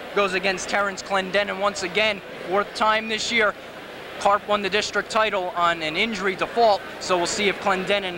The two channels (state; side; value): identical; both; correlation 1.00